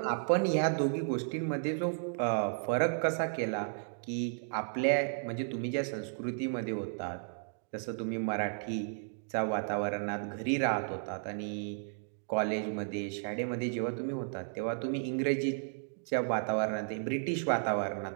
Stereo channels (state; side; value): silent; left; digital silence